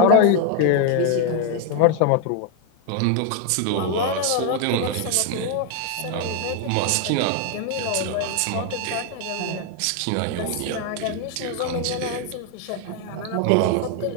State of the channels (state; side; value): different; both; correlation 0.01